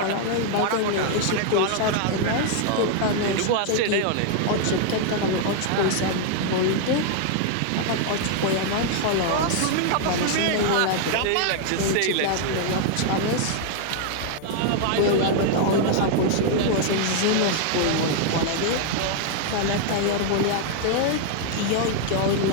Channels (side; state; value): both; different; correlation 0.00